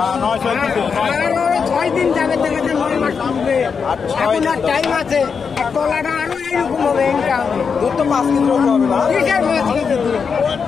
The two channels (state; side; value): quieter; right; 5.9 dB